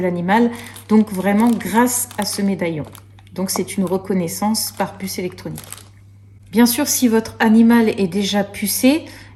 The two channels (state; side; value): identical; both; correlation 1.00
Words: donc vraiment grâce à ce médaillon. Donc c'est une reconnaissance par puce électronique. Bien sûr, si votre animal est déjà pucé,